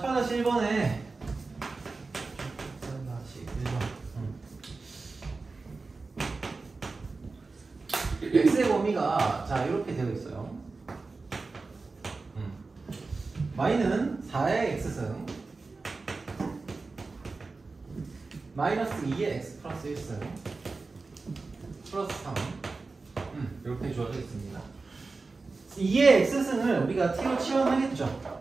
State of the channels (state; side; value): quieter; left; 3.9 dB